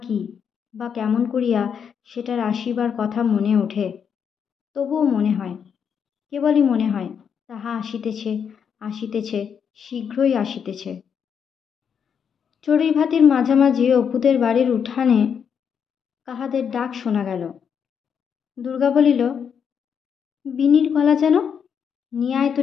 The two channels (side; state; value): right; quieter; 7.3 dB